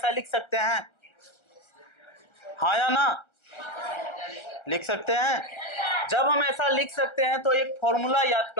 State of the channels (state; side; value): late; right; 1.3 ms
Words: लिख सकते हैं, हाँ या ना, लिख सकते हैं। जब हम ऐसा लिख सकते हैं तो एक फॉर्मूला याद